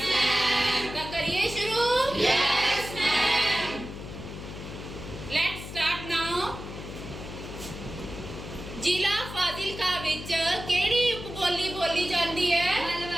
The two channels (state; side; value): noise; left; hum, 10 dB below the sound